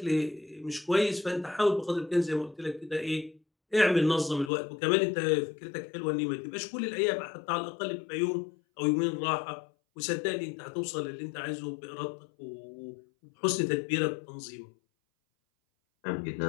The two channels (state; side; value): drops out; right; at 4.5 s